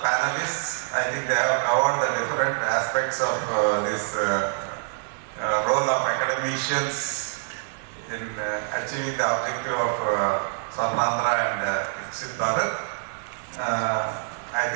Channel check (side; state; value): left; silent; 61 dB below the other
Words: I think they have covered the different aspects of this role of academicians in achieving the objective of Swarna and Viksit Bharat. I